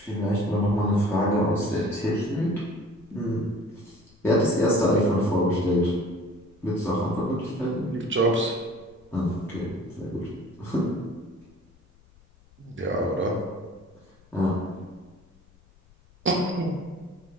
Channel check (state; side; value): noise; left; rumble, 29 dB below the sound